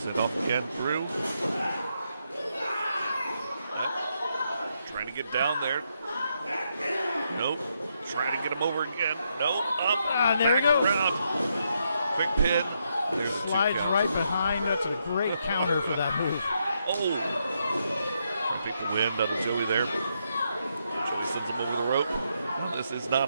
Sit off again through. Trying to get down there. Nope. Trying to get him over again. Nope. Up. There you go. Around. Quick pin. There's the Slides right behind. That's a great counter for that move. Oh. Trying to take the wind out of Joey there. Joey sends him over the rope. This is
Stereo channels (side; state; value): both; inverted; correlation -0.79